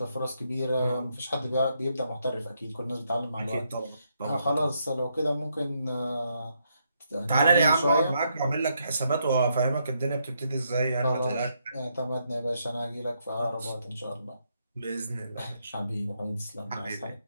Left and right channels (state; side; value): inverted; both; correlation -0.77